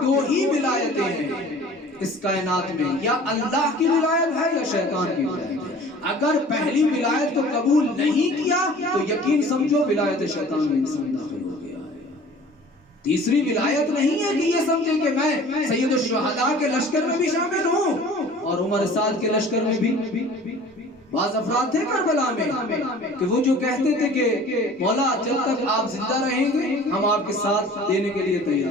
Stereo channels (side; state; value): both; normal; correlation 0.46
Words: دو ہی ولایتیں ہیں اس کائنات میں، یا اللہ کی ولایت ہے یا شیطان کی ولایت ہے۔ اگر پہلی ولایت کو قبول نہیں کیا تو یقین سمجھو ولایت شیطان میں انسان داخل ہو گیا ہے۔ تیسری ولایت نہیں ہے کہ یہ سمجھے کہ میں سید الشہداء کے لشکر میں بھی شامل ہوں اور عمر سعد کے لشکر میں بھی۔ بعض افراد تھے کربلا میں کہ وہ جو کہتے تھے کہ مولا جب تک آپ زندہ رہیں گے ہم آپ کے ساتھ دینے کے لیے